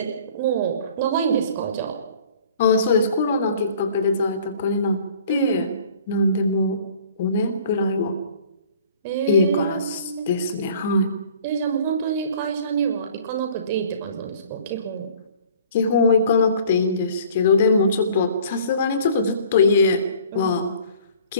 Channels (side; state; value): both; inverted; correlation -0.51